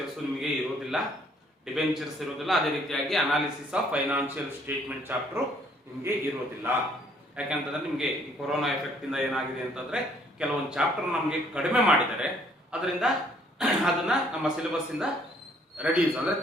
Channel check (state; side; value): normal; both; correlation 0.63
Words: ನಿಮಗೆ ಇರೋದಿಲ್ಲ, ಅದೇ ರೀತಿಯಾಗಿ analysis of financial statement chapter ನಿಮಗೆ ಇರೋದಿಲ್ಲ. ಯಾಕೆಂತಂದ್ರೆ ನಿಮಗೆ ಈ ಕೊರೋನಾ ಎಫೆಕ್ಟ್ ಇಂದ ಏನಾಗಿದೆ ಅಂತಂದ್ರೆ ಕೆಲವೊಂದು ಚಾಪ್ಟರ್ ನಮಗೆ ಕಡಿಮೆ ಮಾಡಿದ್ದಾರೆ, ಅದರಿಂದ ಅದನ್ನ ನಮ್ಮ ಸಿಲೆಬಸ್ ಇಂದ ರೆಡ್ಯೂಸ್ ಅಂದ್ರೆ